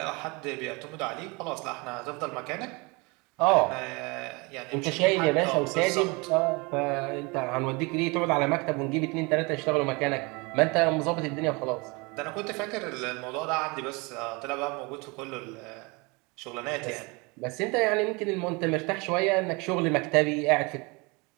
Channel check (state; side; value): quieter; left; 27.7 dB